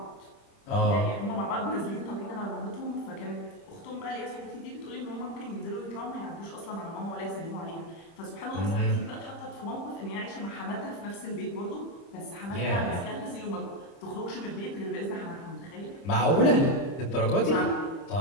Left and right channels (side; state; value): right; late; 30 ms